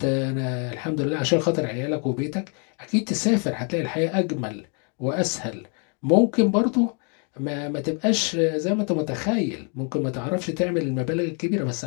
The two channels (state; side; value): quieter; right; 38.4 dB